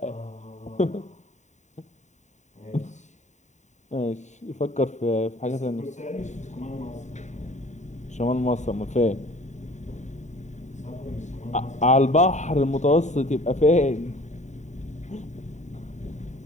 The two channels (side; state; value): right; late; 0.34 ms